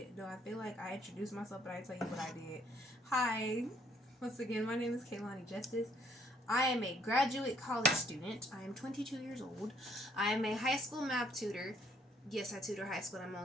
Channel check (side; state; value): both; normal; correlation 0.67